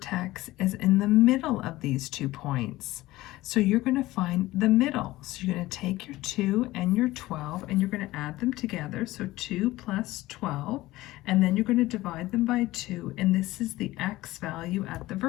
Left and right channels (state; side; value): quieter; right; 17.7 dB